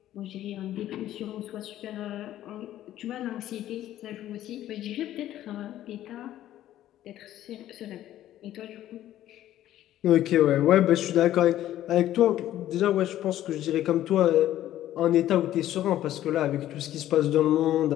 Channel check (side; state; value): right; quieter; 12.9 dB